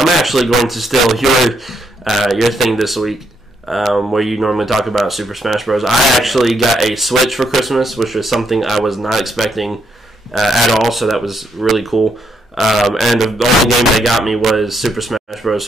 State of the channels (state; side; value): normal; both; correlation 0.76